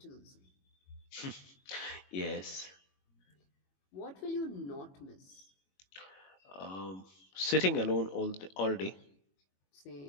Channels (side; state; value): right; late; 21 ms